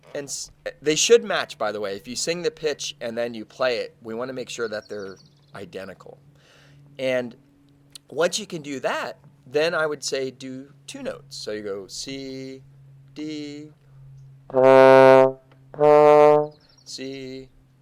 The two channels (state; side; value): identical; both; correlation 1.00